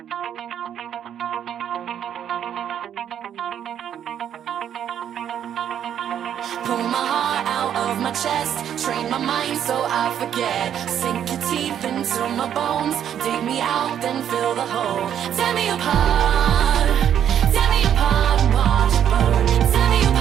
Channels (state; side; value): quieter; left; 9.5 dB